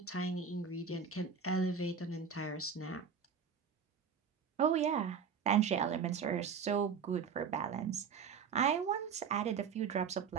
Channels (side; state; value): left; quieter; 6.4 dB